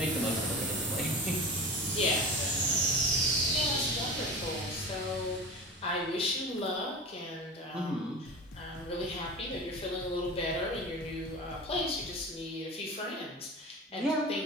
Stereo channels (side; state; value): both; normal; correlation 0.31